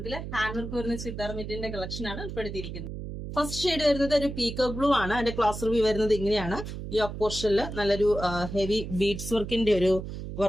ഹാൻഡ് വർക്ക് വരുന്ന ചുരിദാർ മെറ്റീരിയലിന്റെ കളക്ഷൻ ആണ് ഉൾപ്പെടുത്തിയിരിക്കുന്നത്. ഫസ്റ്റ് ഷെയ്ഡ് വരുന്നത് ഒരു പീക്കോ ബ്ലൂ ആണ്. അതിന്റെ ക്ലാസ് റിവ്യൂ വരുന്നത് ഇങ്ങനെയാണ്. യോക്ക് പോർഷനിൽ നല്ലൊരു ഹെവി ബീഡ്സ് വർക്കിന്റെ ഒരു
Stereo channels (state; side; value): noise; right; hum, 8 dB below the sound